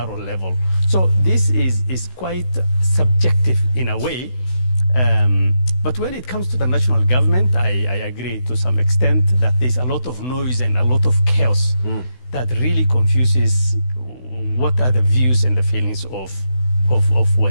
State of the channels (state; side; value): late; right; 16 ms